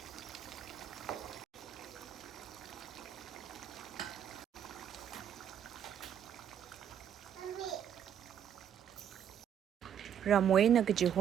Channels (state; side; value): quieter; left; 9.1 dB